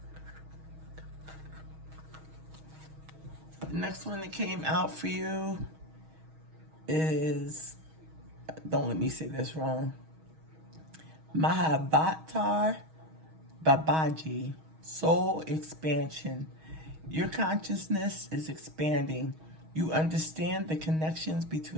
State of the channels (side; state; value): left; late; 6.3 ms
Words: The next one that came out for you is, don't let me say this wrong, Mahavatar Babaji, soul expansion. Your consciousness is expanding. You understand the connections